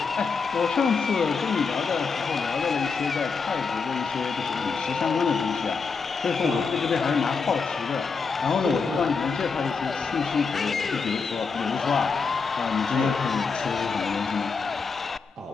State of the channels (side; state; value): right; quieter; 5.0 dB